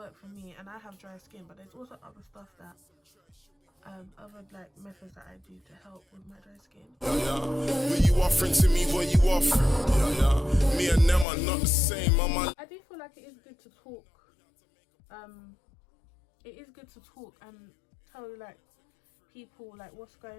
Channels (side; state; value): right; drops out; at 11.2 s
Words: for me, and I have dry skin, but there's also other stuff that other like methods that I do to help with my dry skin. What you offering to me, what you offering? Me and them are not the same, I do feel like it is good to talk. It is good to talk and tell like people like what's